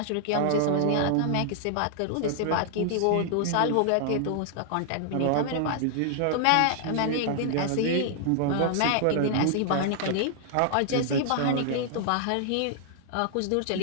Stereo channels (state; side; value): different; both; correlation -0.01